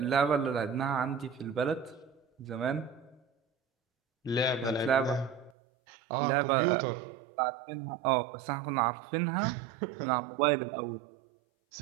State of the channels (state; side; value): drops out; left; at 5.5 s